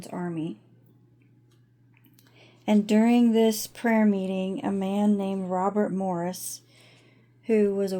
army. And during this prayer meeting, a man named Robert Morris, who was a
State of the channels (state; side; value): identical; both; correlation 1.00